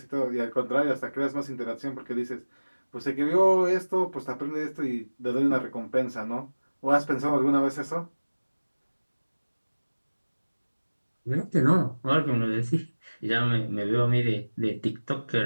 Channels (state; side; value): inverted; both; correlation -1.00